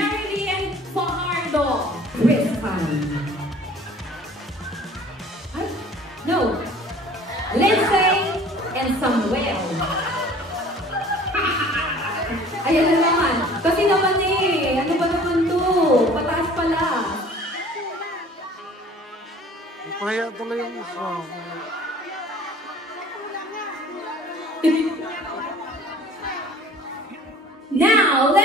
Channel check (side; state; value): both; normal; correlation 0.49